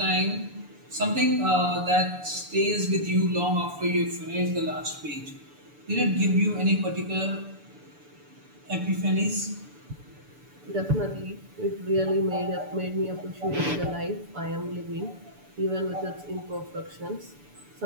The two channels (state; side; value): late; left; 6.9 ms